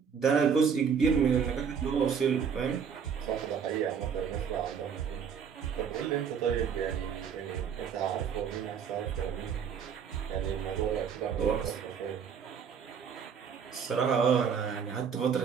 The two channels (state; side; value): quieter; left; 7.0 dB